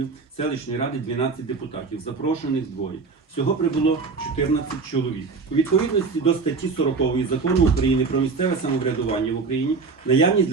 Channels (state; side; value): quieter; left; 4.5 dB